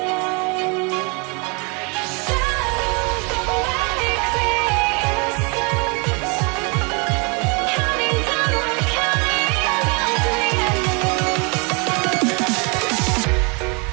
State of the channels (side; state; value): left; quieter; 32.0 dB